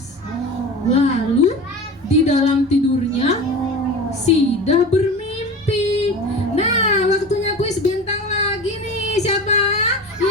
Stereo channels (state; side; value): normal; both; correlation 0.32